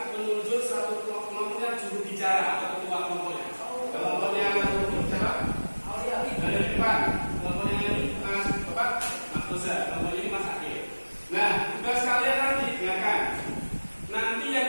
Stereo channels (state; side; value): inverted; both; correlation -1.00